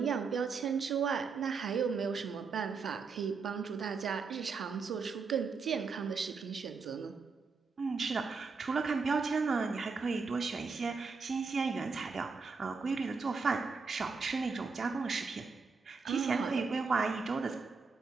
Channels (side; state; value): left; quieter; 4.8 dB